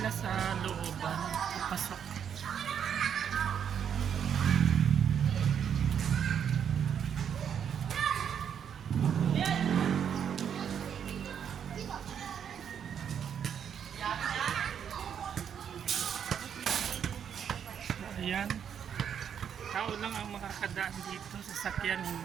sa looban, papasok. So, ayan. Tao lang ang makakadaan dito, sasakyan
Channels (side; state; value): left; quieter; 8.2 dB